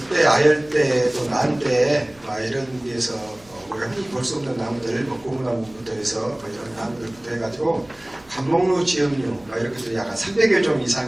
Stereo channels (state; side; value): noise; right; hum, 28 dB below the sound